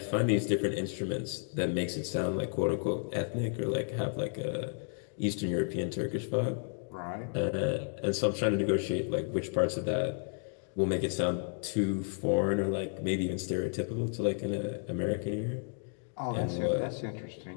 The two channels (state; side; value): silent; right; 56 dB below the other